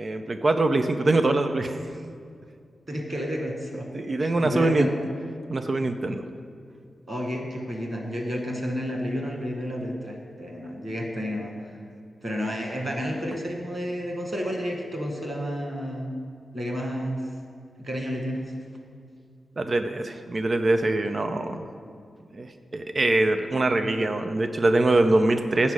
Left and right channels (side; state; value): both; normal; correlation 0.93